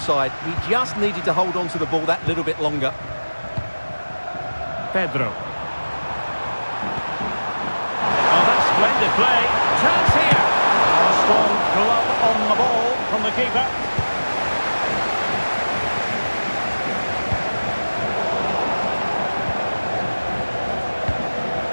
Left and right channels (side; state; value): both; inverted; correlation -1.00